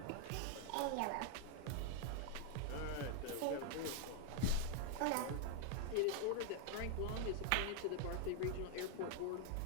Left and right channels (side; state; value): both; different; correlation 0.00